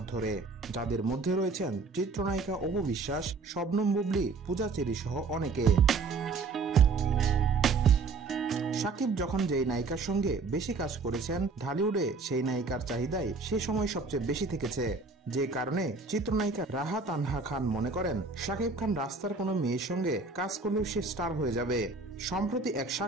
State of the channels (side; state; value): left; quieter; 4.1 dB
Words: ধরে, যাদের মধ্যে রয়েছেন চিত্রনায়িকা অপু বিশ্বাস, শবনম বুবলী, পূজা চেরি সহ অনেকে। শাকিব যখন যেই নায়িকার সঙ্গে বেশি কাজ করেছেন, ঢালিউডে সেই নায়িকার চাহিদাই সে সময় সবচেয়ে বেশি থেকেছে, যে কারণে চিত্রনায়িকা রাহা তানহা খান মনে করেন শাকিব খান রাস্তার কোনো মেয়ের সঙ্গে কাজ করলেও সে স্টার হয়ে যাবে। সম্প্রতি এক